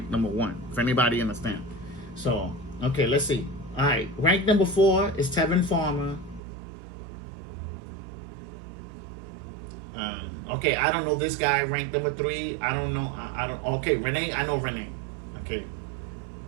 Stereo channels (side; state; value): left; drops out; at 6.4 s